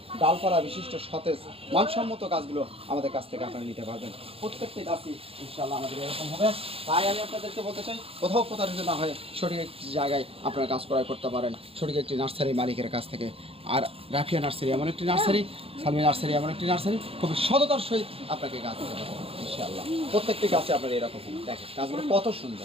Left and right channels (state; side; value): late; left; 0.27 ms